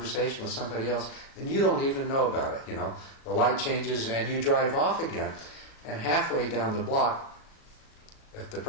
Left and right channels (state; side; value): late; right; 37 ms